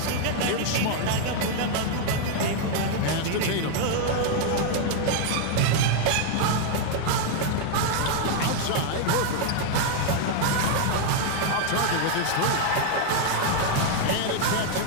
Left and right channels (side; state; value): both; different; correlation 0.00